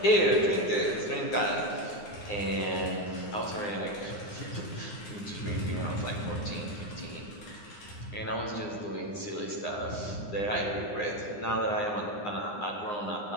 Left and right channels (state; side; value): late; right; 9.7 ms